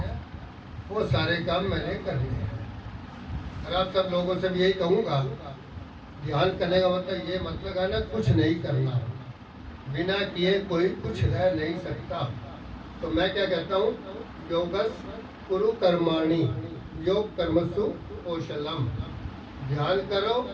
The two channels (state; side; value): identical; both; correlation 1.00